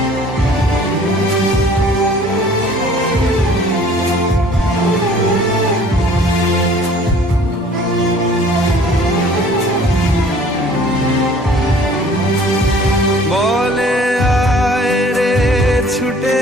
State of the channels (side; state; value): both; normal; correlation 0.52